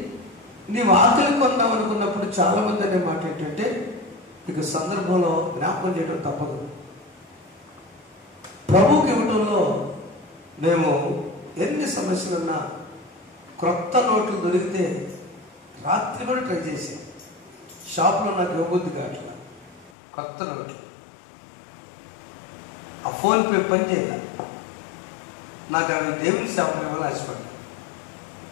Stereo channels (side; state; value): right; drops out; at 19.9 s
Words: నీవు ఆకలి కొందాం అనుకున్నప్పుడు చాలా మంది అనే మాట ఏంటంటే ఇక సందర్భంలో జ్ఞాపకం చేయడం తప్పదు. ప్రభువుకి ఇవ్వడంలో మేము ఎన్ని సమస్యలున్నా క్రొత్త నోట్లు దొరికితే రాత్రి కూడా ట్రై చేసాం. షాప్లో నాకు ఇవ్వబుద్ధి కావట్లా కొత్త నోట్లు. ఆ ఫోన్పే పని చేయాలి. నాకు అవి దేవుని షాప్లో ఇవ్వాలని ఆశపడ్డా.